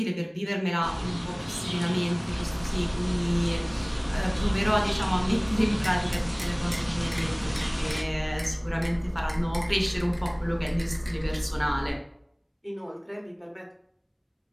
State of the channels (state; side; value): identical; both; correlation 1.00